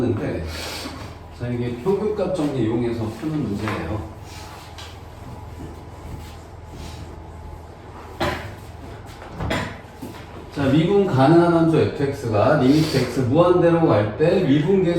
자, 이게 평균값 정리 이용해서 푸는 문제예요. 자, 미분 가능한 함수 fx가 리미트 x 무한대로 갈 때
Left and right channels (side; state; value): both; identical; correlation 1.00